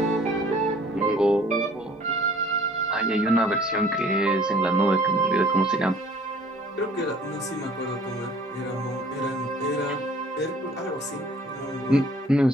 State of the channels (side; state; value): both; normal; correlation 0.53